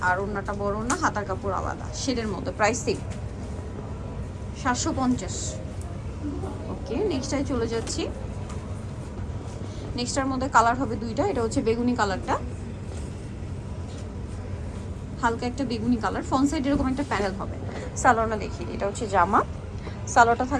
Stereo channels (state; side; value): identical; both; correlation 1.00